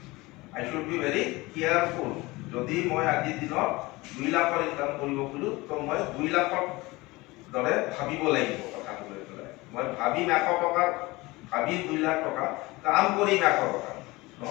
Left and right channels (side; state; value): right; quieter; 21.9 dB